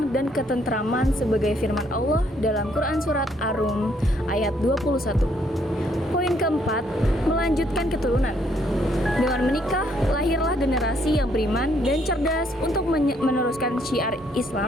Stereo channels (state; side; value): normal; both; correlation 0.69